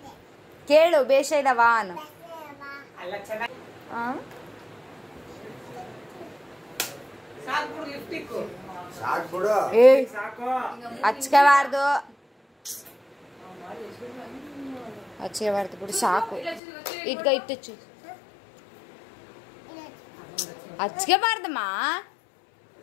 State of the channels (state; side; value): drops out; right; at 16.6 s